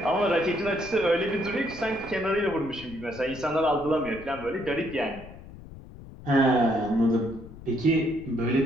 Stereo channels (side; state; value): left; noise; rumble, 16 dB below the sound